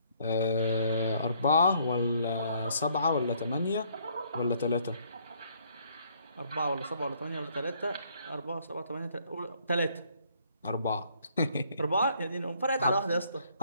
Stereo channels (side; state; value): both; inverted; correlation -0.66